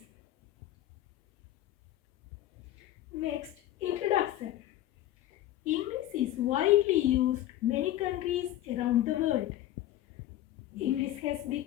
Next, introduction. English is widely used in many countries around the world. English has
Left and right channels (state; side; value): quieter; right; 13.6 dB